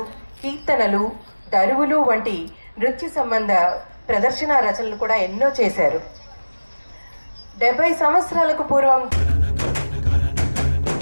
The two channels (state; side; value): inverted; both; correlation -1.00